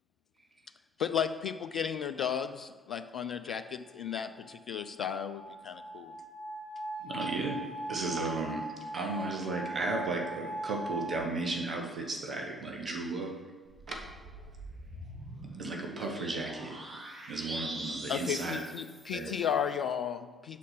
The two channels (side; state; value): both; normal; correlation 0.54